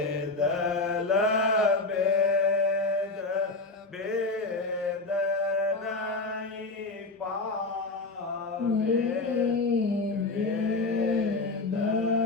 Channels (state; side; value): quieter; right; 3.4 dB